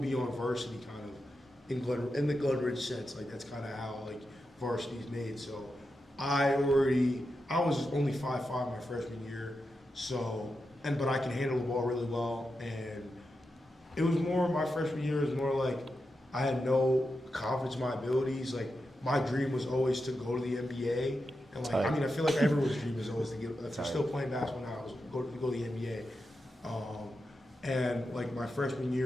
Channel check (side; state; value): both; normal; correlation 0.88